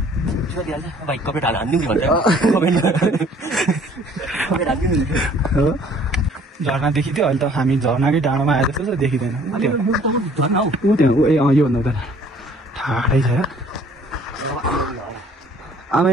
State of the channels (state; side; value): normal; both; correlation 0.56